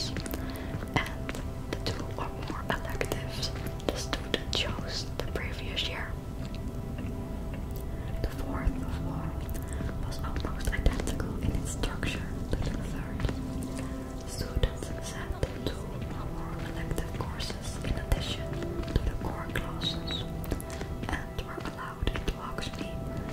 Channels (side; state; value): both; identical; correlation 1.00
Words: and the 2 or more electives the student chose the previous year. The fourth of all was almost identical in its structure to the third. Students sat 2 or more elective courses in addition to the core classes, and were allowed into